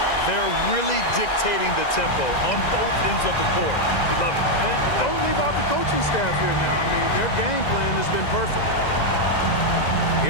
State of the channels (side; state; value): right; late; 2.0 ms